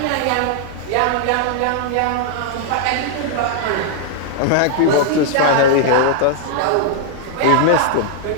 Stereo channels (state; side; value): different; both; correlation -0.01